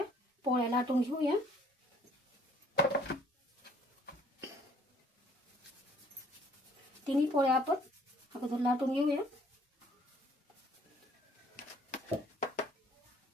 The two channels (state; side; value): normal; both; correlation 0.59